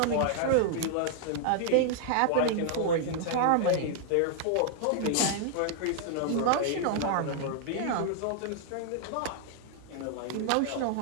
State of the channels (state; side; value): different; both; correlation -0.01